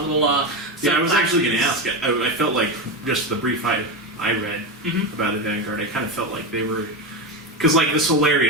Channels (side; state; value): both; normal; correlation 0.16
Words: I was actually going to ask. I felt like, just the brief I read about the Vanguard, I kind of felt like they were... Because, the